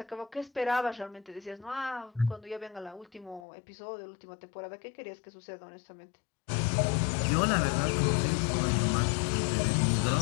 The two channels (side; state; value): right; drops out; at 3.5 s